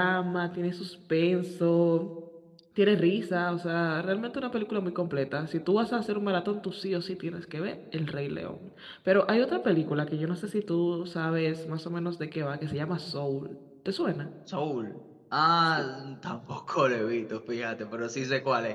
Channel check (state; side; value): identical; both; correlation 1.00